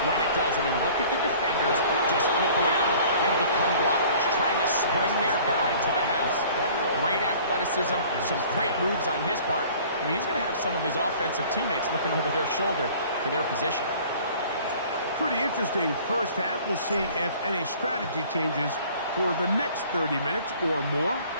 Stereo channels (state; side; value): inverted; both; correlation -0.50